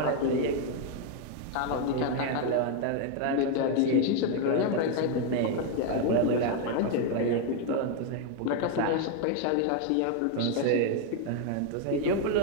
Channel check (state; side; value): different; both; correlation 0.01